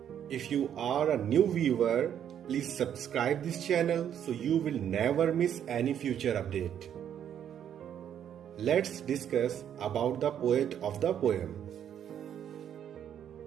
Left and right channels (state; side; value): quieter; left; 9.5 dB